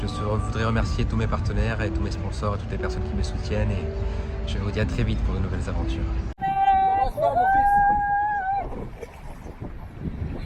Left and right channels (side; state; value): both; identical; correlation 1.00